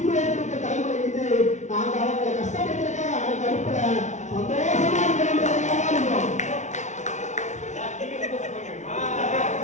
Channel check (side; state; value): right; late; 0.34 ms